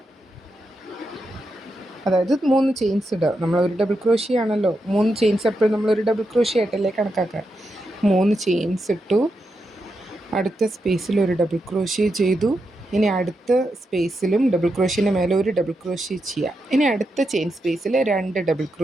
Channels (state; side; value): normal; both; correlation 0.85